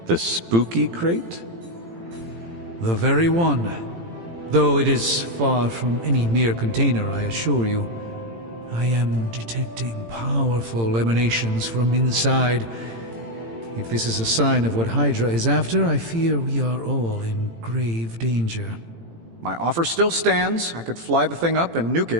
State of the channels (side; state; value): left; late; 18 ms